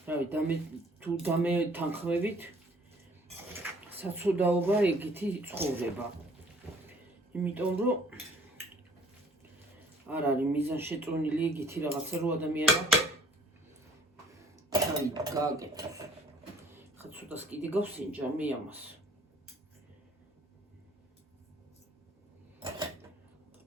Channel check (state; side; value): normal; both; correlation 0.56